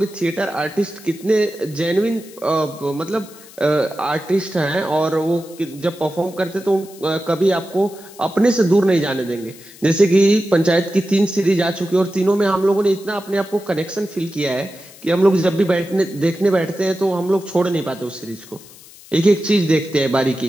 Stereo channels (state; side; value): noise; left; hiss, 21 dB below the sound